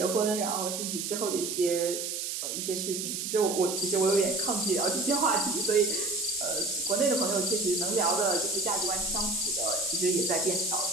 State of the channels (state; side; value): noise; right; hiss, 4 dB below the sound